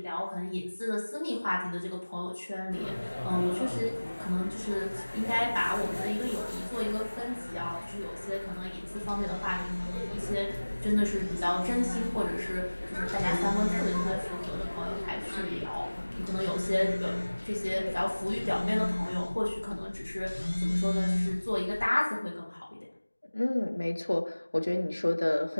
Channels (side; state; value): both; inverted; correlation -1.00